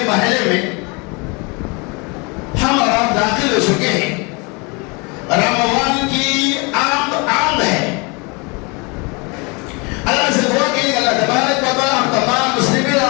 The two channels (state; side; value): quieter; right; 29.7 dB